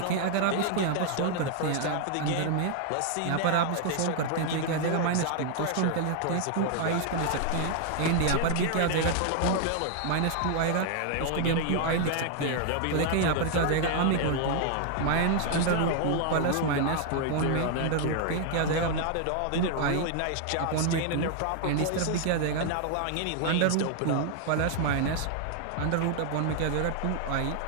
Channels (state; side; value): different; both; correlation 0.00